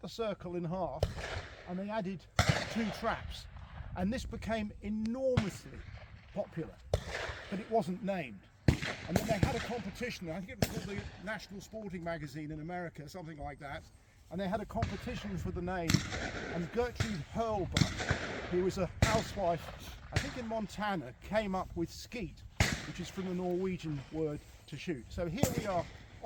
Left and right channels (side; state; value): both; identical; correlation 1.00